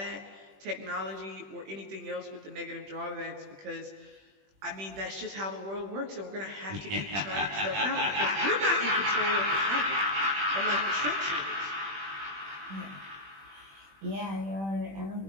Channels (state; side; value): late; left; 21 ms